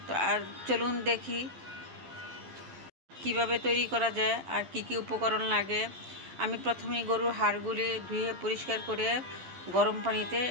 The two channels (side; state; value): left; late; 12 ms